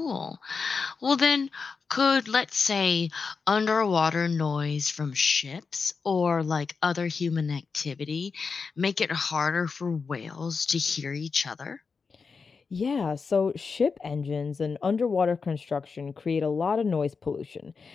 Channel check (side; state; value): right; quieter; 5.0 dB